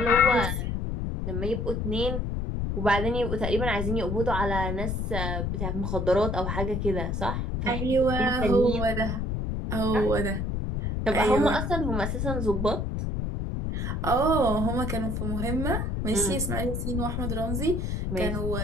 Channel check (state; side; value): noise; left; rumble, 1 dB below the sound